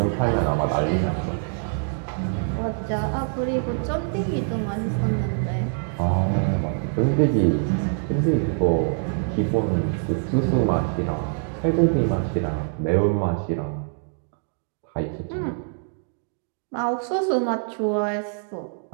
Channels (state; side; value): silent; left; 62 dB below the other